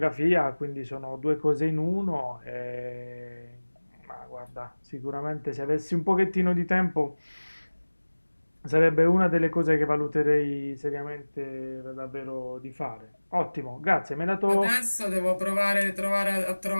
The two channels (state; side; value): inverted; both; correlation -1.00